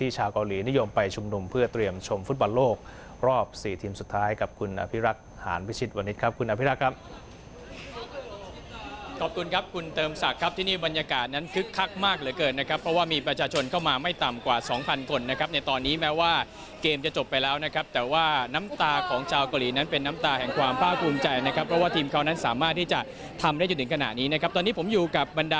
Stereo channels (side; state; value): both; identical; correlation 1.00